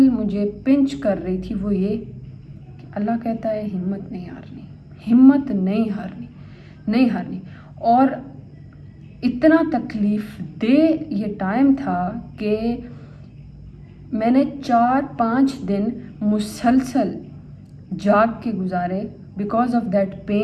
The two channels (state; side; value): identical; both; correlation 1.00